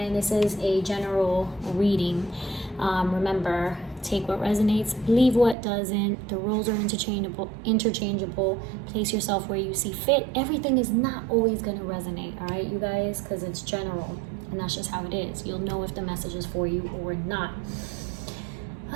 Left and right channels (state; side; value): drops out; left; at 5.6 s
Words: this is a general reading. Remember, take what resonates, leave what doesn't. The roles are interchangeable. Place yourself where you see fit. Everything is not always gonna resonate, all right, you guys, because it's general, and that's just how it is. You'll know if the message is for you or not.